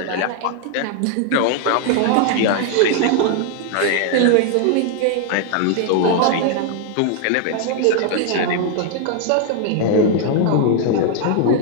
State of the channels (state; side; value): different; both; correlation 0.00